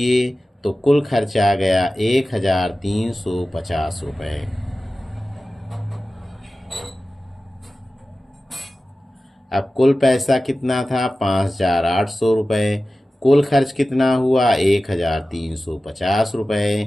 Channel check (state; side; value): normal; both; correlation 0.95